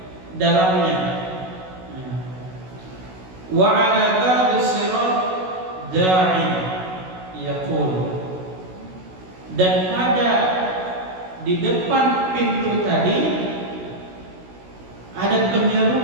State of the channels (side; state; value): left; late; 16 ms